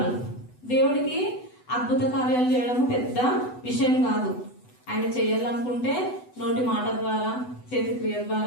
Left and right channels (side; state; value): right; late; 8.0 ms